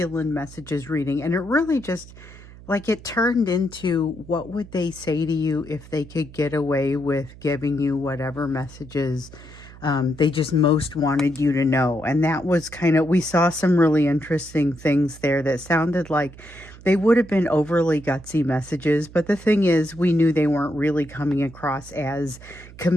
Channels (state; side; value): noise; right; hum, 19 dB below the sound